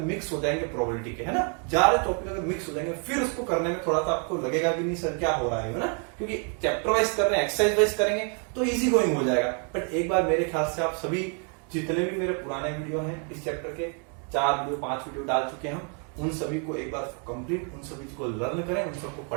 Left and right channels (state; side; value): quieter; left; 39.8 dB